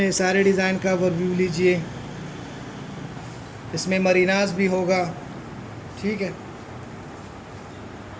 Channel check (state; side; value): identical; both; correlation 1.00